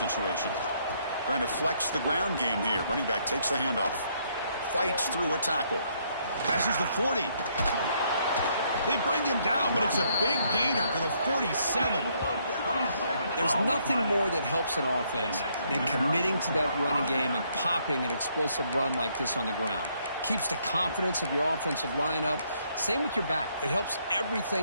Trying to flex the ground game here. Running back takes the handoff. Fights through a tackle. Passes the 40. They bring him down, but it's a big gainer to the 47. There's nothing more that helps an offense than committing to that running game and popping an explosive run like this on the ground. Keeps the confidence of your offensive lineup. Same with your back. It helps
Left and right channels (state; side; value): inverted; both; correlation -0.70